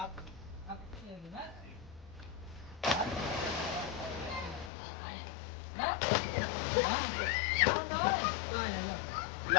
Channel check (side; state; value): right; drops out; at 4.7 s